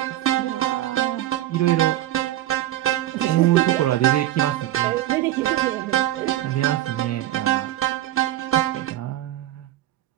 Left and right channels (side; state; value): left; quieter; 14.3 dB